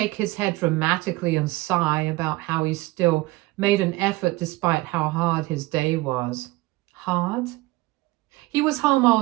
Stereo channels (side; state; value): left; quieter; 20.5 dB